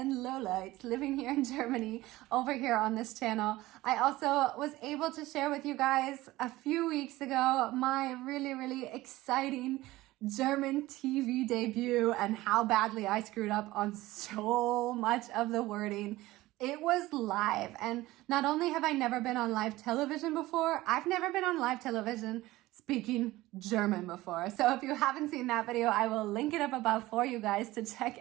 lowlights living here in Germany over here on this channel. I also was able to share with you guys a few weeks ago my really exciting German TV debut and how badly I screwed up on so much of the wording. It was live, and not only have I never been on live television before, I've never been on live television speaking German before. So if you haven't seen that video, I will link it up above for you guys to check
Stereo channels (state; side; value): quieter; left; 18.0 dB